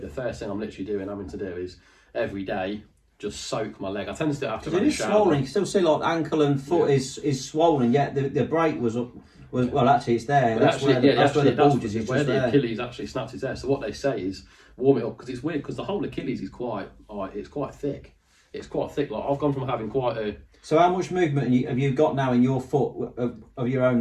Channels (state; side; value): identical; both; correlation 1.00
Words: first thing I'm literally having to do is every day just soak my leg. I tend to do it after a shower. Swollen. You can still see like ankle and foot is swollen. Yet the break was up. Well, actually, it's there. That's where the bulge is. Where the Achilles actually snaps is there. So what they say is warm it up, because it's weird, because the whole Achilles is quite thick. It's quite thick. Like I've gone from having quite a. So how much movement have you got now in your foot of your